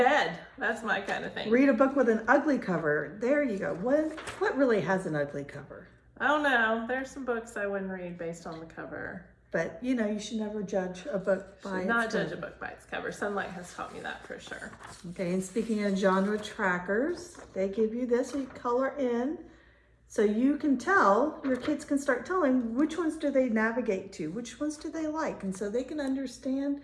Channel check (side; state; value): both; identical; correlation 1.00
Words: That's my kind of thing. Read a book with an ugly cover. There you go. What really has an ugly cover? I don't know. There's some books I wouldn't read based on the cover. But you know, you should never judge a book by its Not cover. judge a book by its cover. Sonlight has taught me that for sure. Okay, and speaking of genre trackers, they give you this, so you color in. So you can tell, your kids can start telling which ones do they navigate to, which ones do they like, and so they can understand,